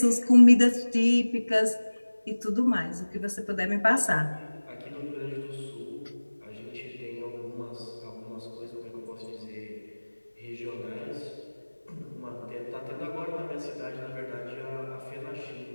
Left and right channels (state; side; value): inverted; both; correlation -1.00